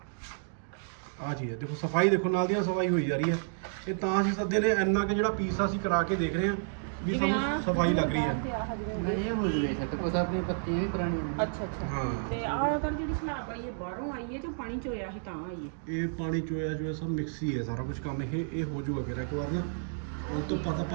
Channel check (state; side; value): silent; left; digital silence